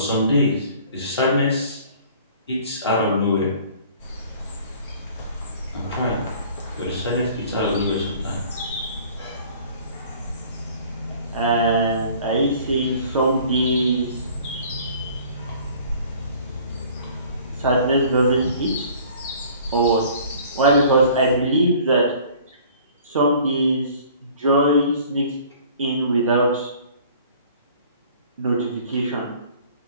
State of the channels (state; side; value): inverted; both; correlation -0.51